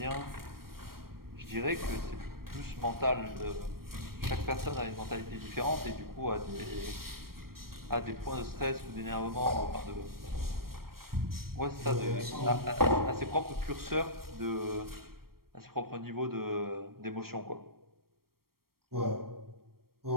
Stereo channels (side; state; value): left; late; 0.94 ms